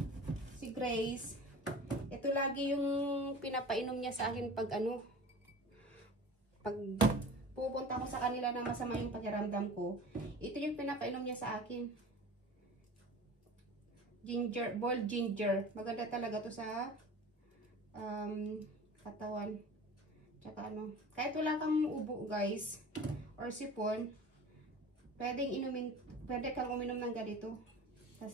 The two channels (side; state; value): both; normal; correlation 0.39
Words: si Grace, ito lagi yung pinapainom niya sa akin pag pag pupunta ko sa kanila na masama yung pakiramdam ko. Ito yung pinapainom niya sa akin. Ginger, boiled ginger. Maganda talaga to sa katawan. Tsaka kahit wala kang ubo guys or sipon, pwede kang uminom ng ganito.